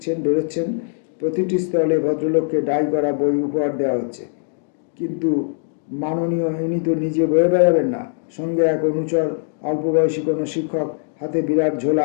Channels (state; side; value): silent; right; digital silence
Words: বেরোচ্ছেন। প্রতিটি স্টলে ভদ্রলোককে ডাই করা বই উপহার দেওয়া হচ্ছে। কিন্তু মাননীয় ইনি তো নিজে বয়ে বেড়াবেন না, সঙ্গে এক অনুচর, অল্প বয়সী কোনো শিক্ষক, হাতে বিরাট